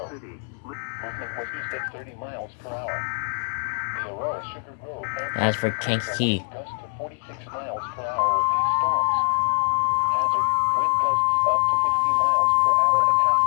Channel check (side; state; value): right; silent; 57 dB below the other